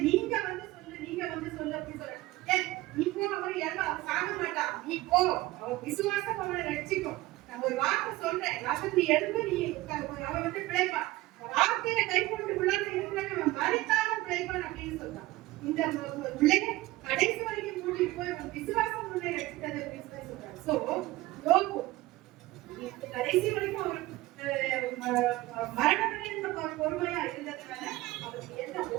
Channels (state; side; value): quieter; left; 18.5 dB